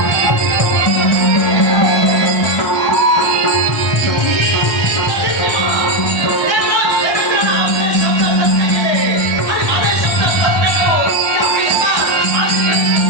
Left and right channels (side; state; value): right; late; 1.2 ms